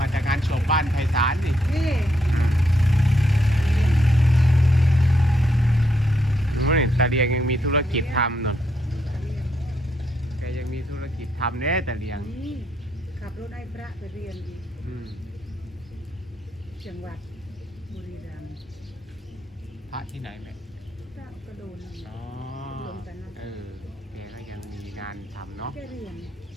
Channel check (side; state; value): both; normal; correlation 0.77